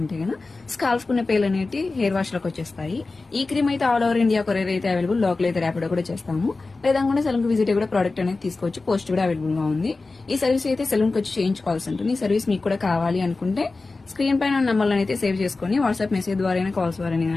గన స్కాల్ఫ్ కున్న పేలు అనేవి హెయిర్ వాష్ లోకి వచ్చేస్తాయి. ఈ క్రీమ్ అయితే ఆల్ ఓవర్ ఇండియా కొరియర్ అయితే అవైలబుల్, లోకల్ అయితే ర్యాపిడో కూడా చేస్తాము. లేదంటే సెలూన్ కి విజిట్ కూడా ప్రోడక్ట్ అనేది తీసుకోవచ్చు, పోస్ట్ కూడా అవైలబుల్ గా ఉంది. ఈ సర్వీస్ అయితే సెలూన్ కి వచ్చి చేయించుకోవాల్సి ఉంటుంది. ఈ సర్వీస్ మీకు కూడా కావాలి అనుకుంటే స్క్రీన్ పైన నంబర్లను అయితే సేవ్ చేసుకుని వాట్సాప్ మెసేజ్ ద్వారా కాల్స్ ద్వారా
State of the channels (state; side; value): quieter; right; 3.6 dB